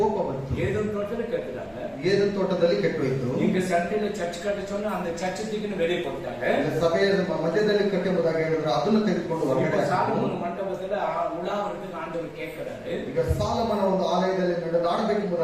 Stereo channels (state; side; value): identical; both; correlation 1.00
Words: ಬಂತು. ஏதோ தோட்டத்துல கேட்டுட்டாங்க, ಏದನ್ ತೋಟದಲ್ಲಿ ಕೆಟ್ಟೋಯ್ತು. இங்க சண்டையில சர்ச் கட்ட சொன்னா அந்த சர்ச் தூக்கின்னு வெளியே போட்டாங்க. ಸಭೆಯ ಮಧ್ಯದಲ್ಲಿ ಕಟ್ಟೆಂಬುದಾಗಿ ಹೇಳಿದ್ರು, ಅದನ್ನು ತೆಗೆದುಕೊಂಡು ಹೊರಗಡೆ. சாலமோன் மண்டபத்துல உலாவதுக்கு ஆண்டவர் கேட்கிறாரு. ಈಗ ಸಾಲಮನ ಒಂದು ಆಲಯದಲ್ಲಿ